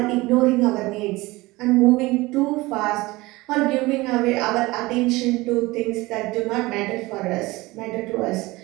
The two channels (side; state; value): left; quieter; 21.0 dB